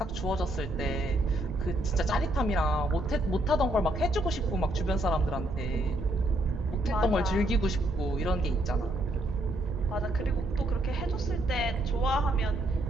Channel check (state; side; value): noise; right; rumble, 9 dB below the sound